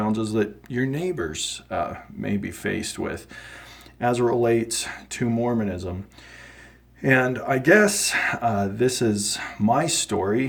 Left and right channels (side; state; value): both; identical; correlation 1.00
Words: that your neighbors may be faced with as it relates to Mormonism. And I guess this is my